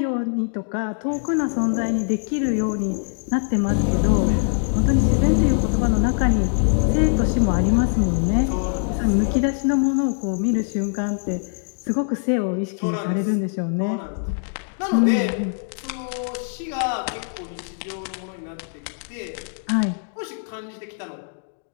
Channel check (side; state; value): right; silent; digital silence